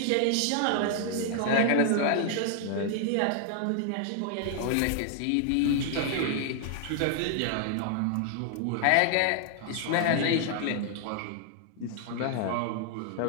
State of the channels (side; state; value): both; different; correlation 0.00